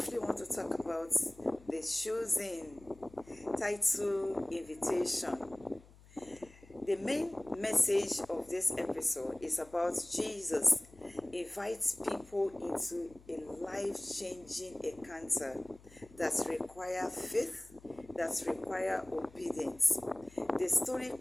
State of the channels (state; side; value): noise; left; hum, 23 dB below the sound